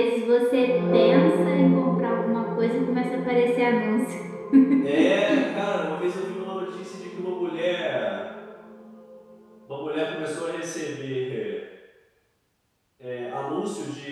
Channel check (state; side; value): identical; both; correlation 1.00